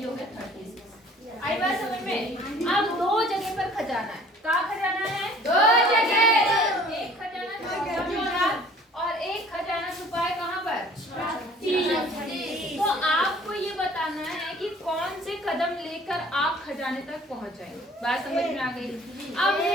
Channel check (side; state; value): both; normal; correlation 0.52